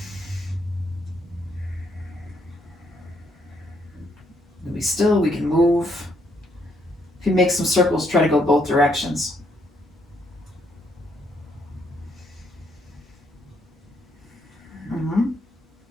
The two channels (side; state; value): both; normal; correlation 0.72